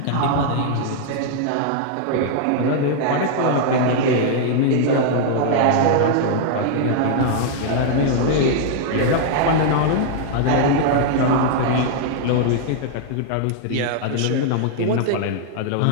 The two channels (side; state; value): both; different; correlation -0.01